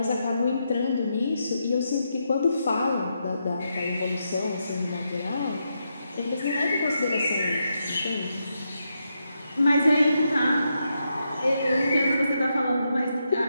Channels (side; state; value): both; inverted; correlation -0.83